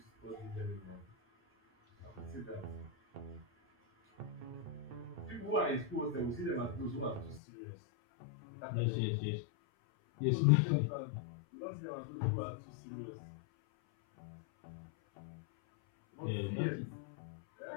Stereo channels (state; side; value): drops out; right; at 7.4 s